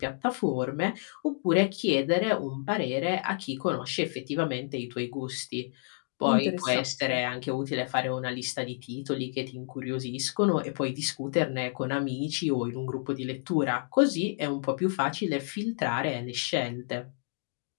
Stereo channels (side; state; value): right; silent; digital silence